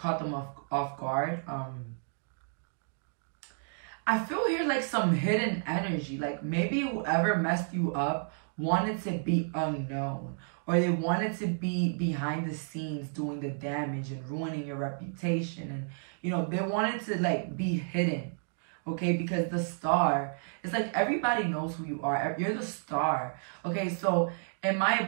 them off guard. I feel here like some hidden energy. Like maybe whoever messed you up wanted to be unknown, or they wanted to be behind the scenes doing the damage and ruining your reputation, and they wanted to like be hidden, okay? Because the star, it's like everybody knows who you are. You're the star, okay? So in my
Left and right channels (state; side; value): silent; left; digital silence